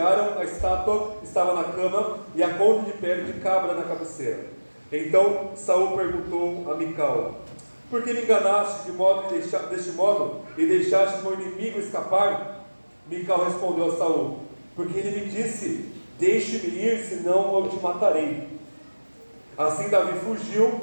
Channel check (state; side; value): inverted; both; correlation -1.00